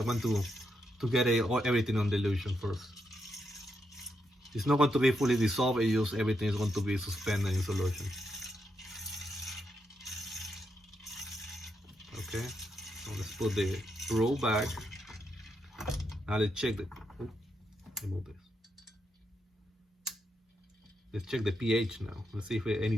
want to get everything on dilution first. It's not going to be fully dissolved, it's just everything is going to be suspended in solution. Okay, so let's put the probe back. Now let's check the, remove this. Let's check the pH now. Let's see if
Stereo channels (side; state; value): both; normal; correlation 0.81